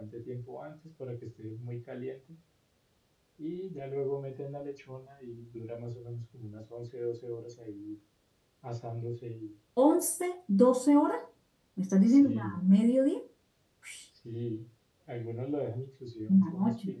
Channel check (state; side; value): identical; both; correlation 1.00